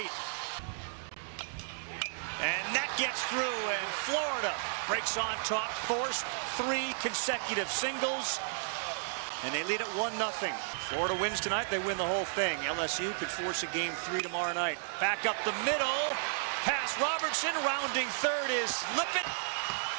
And that gets through, and Florida breaks on top, forced 3 consecutive singles. And they lead at 1-0. Florida wins tonight, they win the whole thing. LSU could force a game 3 tomorrow night. Back up the middle. Pass Robertson, rounding third is Lippett.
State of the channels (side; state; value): left; silent; digital silence